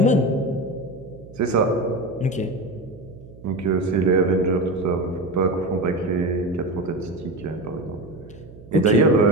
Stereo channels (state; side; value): noise; right; hum, 20 dB below the sound